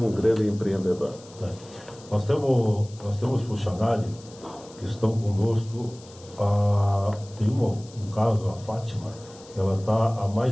um grande empreendedor? Nós temos funcionários que estão conosco, tem um caso, a Fátima, ela está há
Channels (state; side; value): noise; left; hiss, 22 dB below the sound